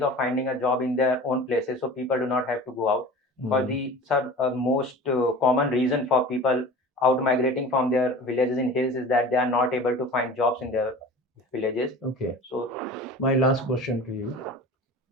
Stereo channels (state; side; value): normal; both; correlation 0.38